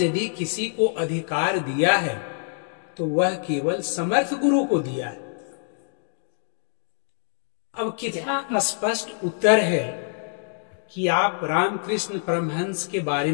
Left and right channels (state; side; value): silent; right; digital silence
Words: किसी को अधिकार दिया है तो वह केवल समर्थ गुरु को दिया है। अब कितना स्पष्ट उत्तर है कि आप रामकृष्ण परमहंस के बारे